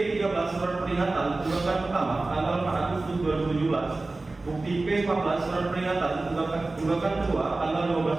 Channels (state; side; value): quieter; left; 3.2 dB